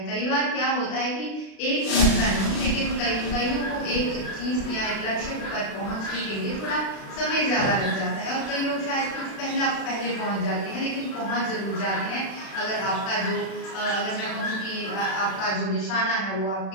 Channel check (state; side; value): late; right; 36 ms